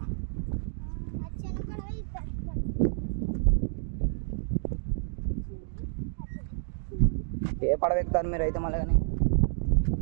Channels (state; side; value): silent; left; digital silence